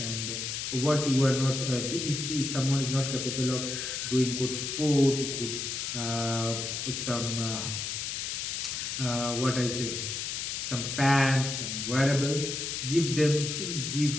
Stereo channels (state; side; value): noise; left; hiss, 3 dB below the sound